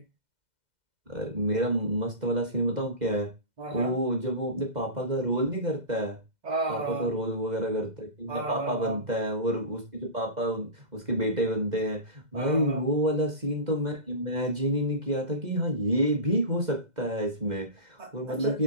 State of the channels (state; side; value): late; left; 2.0 ms